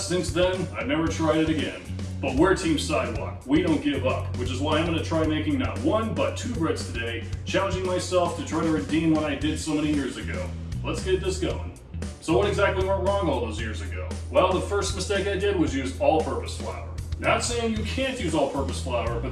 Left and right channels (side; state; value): both; identical; correlation 1.00